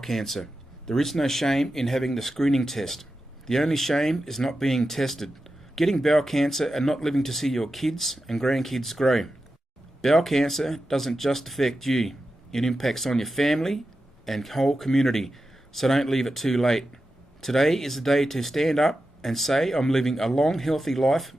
There is no shame in having the screening test. The only shame is not being tested, getting bowel cancer and not living to see your kids and grandkids grow. Bowel cancer doesn't just affect you. It impacts on your family and whole community, so don't leave it too late. Today is the day to stand up and say, I'm living a long, healthy life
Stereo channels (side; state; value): both; normal; correlation 0.91